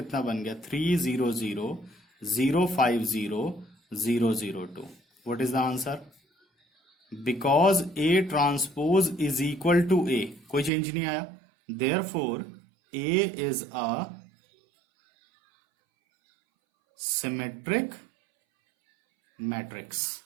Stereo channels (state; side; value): drops out; left; at 10.7 s